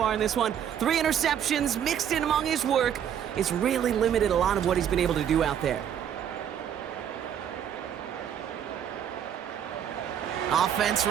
in this one? 3 interceptions mixed in among his work. It's really limited a lot of what he's been able to do out there. Offense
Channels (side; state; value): left; quieter; 9.2 dB